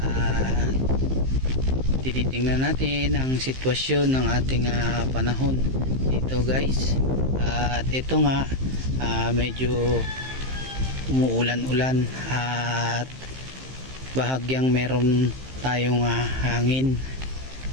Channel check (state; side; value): late; left; 15 ms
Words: Tinitingnan natin ang sitwasyon ng ating panahon dito guys. At ito nga, medyo umuulan-ulan at bahagyang meron tayong hangin.